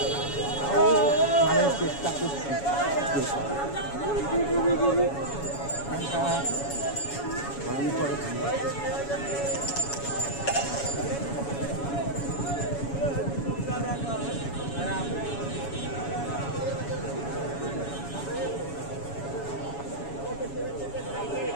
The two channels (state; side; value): late; right; 7.1 ms